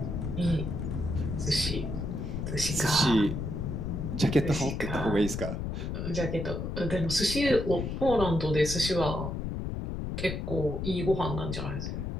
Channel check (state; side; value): noise; left; rumble, 4 dB below the sound